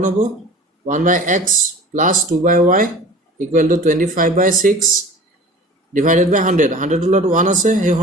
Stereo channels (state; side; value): normal; both; correlation 0.42